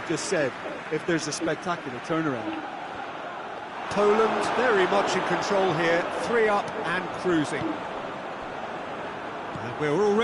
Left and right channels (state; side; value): identical; both; correlation 1.00